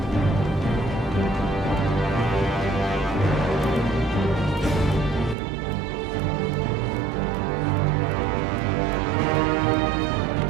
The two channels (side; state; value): left; drops out; at 5.4 s